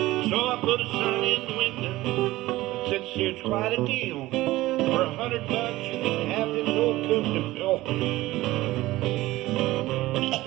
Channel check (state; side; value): quieter; left; 17.6 dB